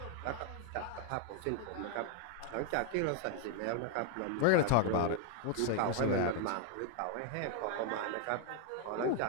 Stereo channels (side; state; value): both; different; correlation 0.01